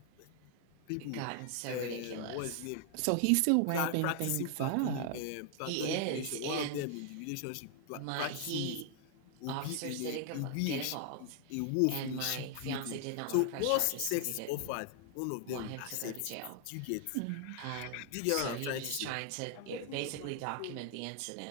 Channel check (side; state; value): both; different; correlation 0.00